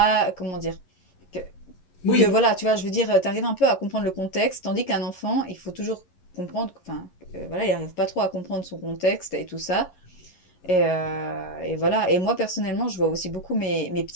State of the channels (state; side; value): late; right; 11 ms